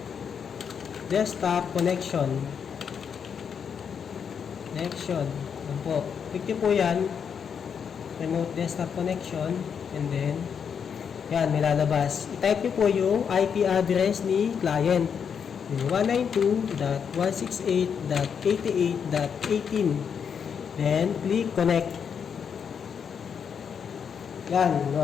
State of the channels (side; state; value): right; quieter; 7.1 dB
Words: connection. Yan po. Click nyo po yan. Remote desktop connection and then yan, may lalabas. I-type nyo po yung IP address ni client. Yung 192.168.88.18. Then, click connect. Yan,